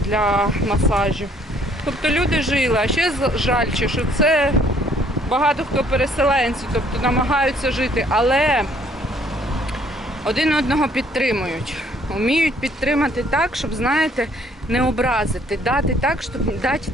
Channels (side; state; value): both; normal; correlation 0.62